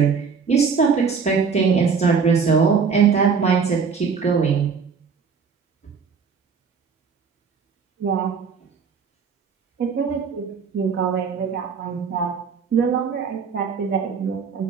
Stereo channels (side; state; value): left; quieter; 5.8 dB